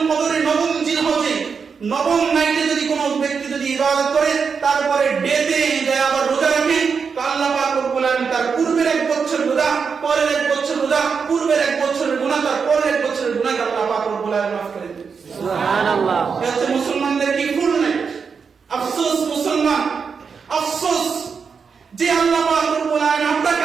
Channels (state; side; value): quieter; left; 5.8 dB